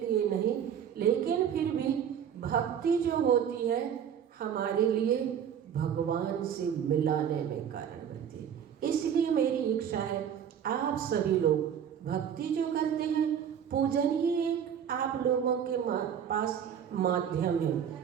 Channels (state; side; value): quieter; left; 8.6 dB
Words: नहीं, लेकिन फिर भी भक्ति जो होती है हमारे लिए भगवान से मिलाने में कारण बनती है। इसलिए मेरी इच्छा है आप सभी लोग भक्ति जो करते हैं, पूजन ही एक आप लोगों के पास माध्यम है।